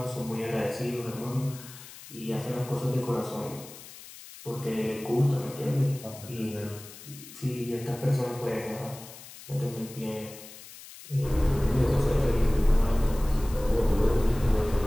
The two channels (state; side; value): noise; left; hiss, 17 dB below the sound